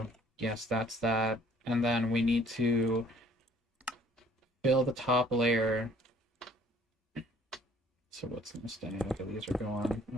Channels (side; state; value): both; normal; correlation 0.57